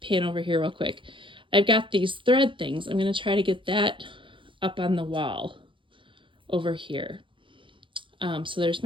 pan over here real quick. I've got these thread things. I'm going to try to get that up on the wall over here. So there's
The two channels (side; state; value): left; late; 0.24 ms